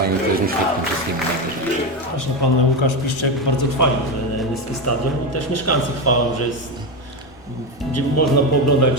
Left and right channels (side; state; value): both; normal; correlation 0.14